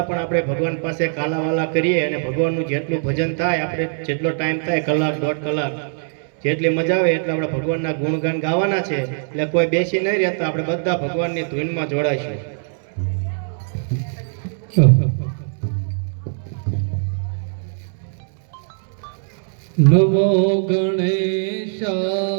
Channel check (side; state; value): left; silent; 65 dB below the other